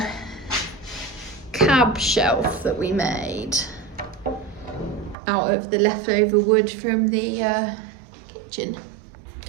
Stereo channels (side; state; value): left; drops out; at 5.2 s